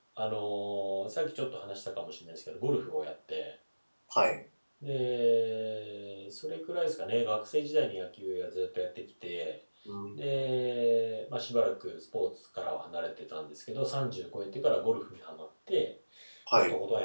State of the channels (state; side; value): inverted; both; correlation -1.00